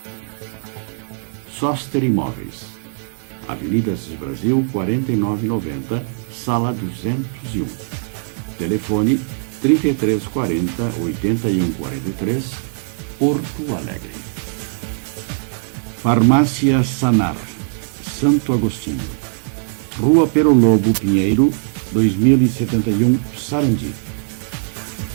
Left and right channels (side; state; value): left; silent; digital silence